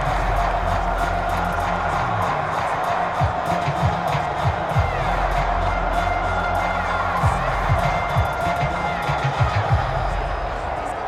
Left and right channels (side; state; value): both; identical; correlation 1.00